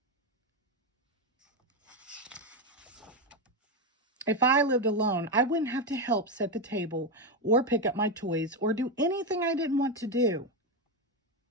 If I lived alone, I wouldn't have to help set the table or pick up my toys or do anything I didn't want to do.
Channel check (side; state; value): both; normal; correlation 0.09